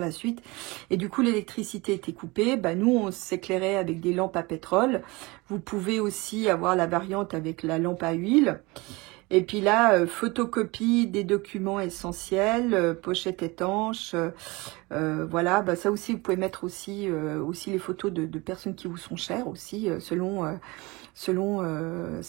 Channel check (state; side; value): quieter; left; 24.0 dB